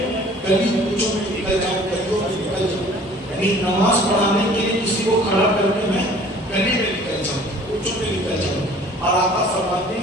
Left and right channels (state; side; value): normal; both; correlation 0.51